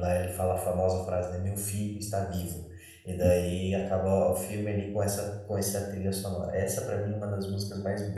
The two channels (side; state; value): both; identical; correlation 1.00